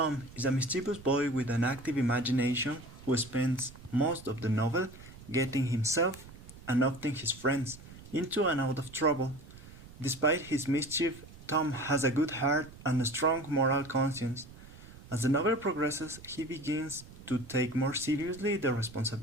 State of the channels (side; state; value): right; noise; rumble, 18 dB below the sound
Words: is a mischievous boy with an active imagination who spends most of the novel getting himself and often his friends into and out of trouble. Despite his mischief, Tom has a good heart and a strong moral conscience. As the novel progresses, he begins to take more seriously the